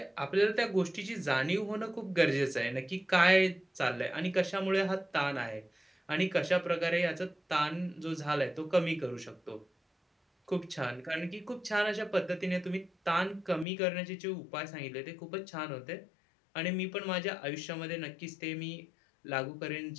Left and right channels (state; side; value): drops out; right; at 13.7 s